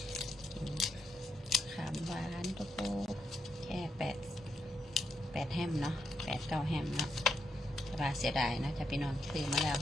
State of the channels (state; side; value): normal; both; correlation 0.81